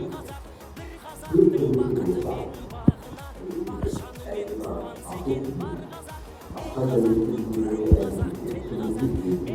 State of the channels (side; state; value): both; identical; correlation 1.00